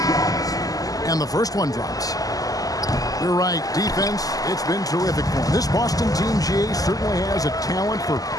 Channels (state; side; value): late; right; 0.17 ms